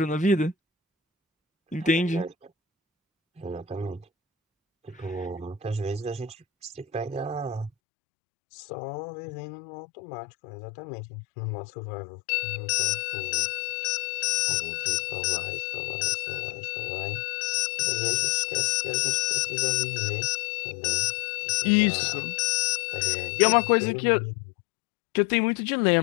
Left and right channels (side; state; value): right; drops out; at 7.7 s